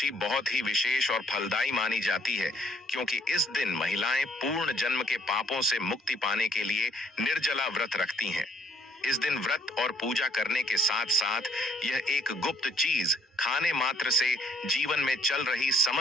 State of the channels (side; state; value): both; normal; correlation 0.65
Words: बहुत ही विशेष और फलदायी मानी जाती है, क्योंकि इस दिन महिलाएं पूर्ण जन्म के पापों से मुक्ति पाने के लिए निर्जला व्रत रखती हैं। इस दिन व्रत और पूजा करने के साथ साथ यह एक गुप्त चीज खाने मात्र से जीवन में चल रही